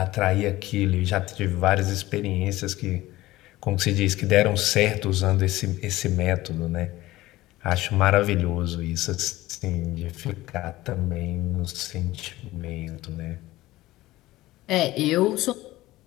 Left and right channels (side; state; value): right; quieter; 17.4 dB